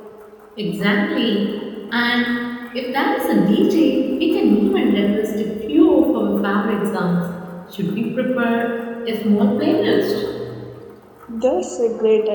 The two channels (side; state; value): both; identical; correlation 1.00